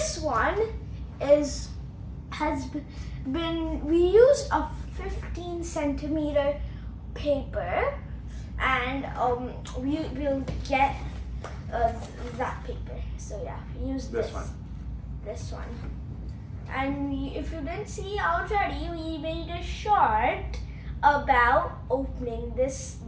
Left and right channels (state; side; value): identical; both; correlation 1.00